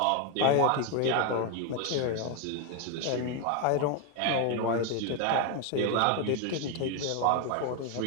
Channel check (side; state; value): both; different; correlation 0.02